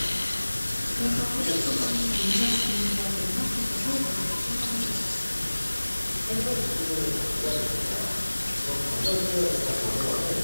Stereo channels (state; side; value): inverted; both; correlation -1.00